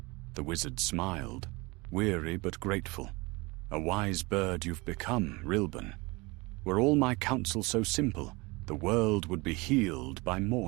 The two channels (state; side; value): quieter; left; 24.9 dB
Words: The wizard smiled, weary but grateful. "A wise bird you've become, Rilban. Were all my counsel so simple, the world would be healed by